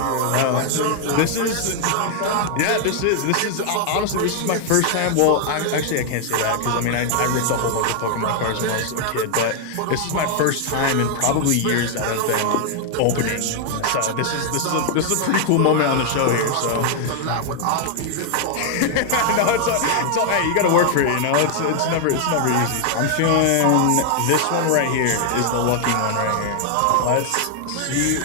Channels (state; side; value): different; both; correlation 0.00